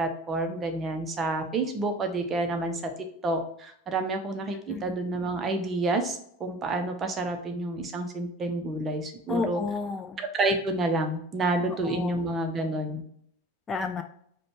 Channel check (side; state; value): both; normal; correlation 0.46